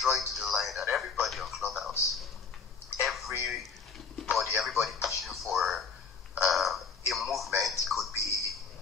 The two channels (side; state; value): right; quieter; 5.3 dB